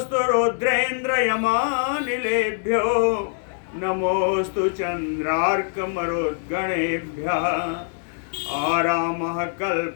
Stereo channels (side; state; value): right; silent; digital silence